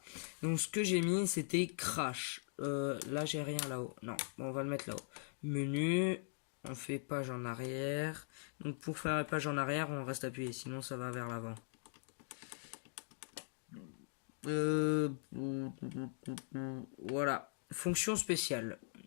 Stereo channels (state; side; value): silent; right; digital silence